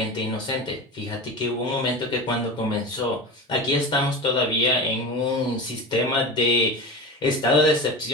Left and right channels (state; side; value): normal; both; correlation 0.28